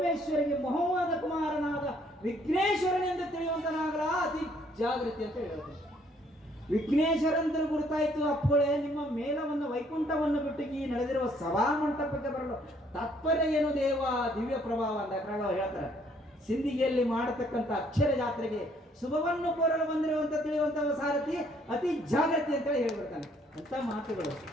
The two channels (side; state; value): both; normal; correlation 0.64